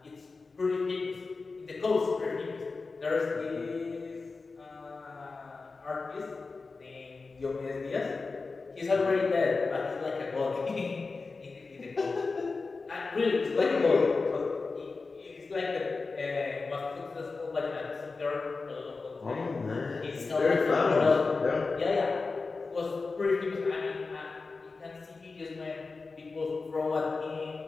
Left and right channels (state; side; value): quieter; right; 4.1 dB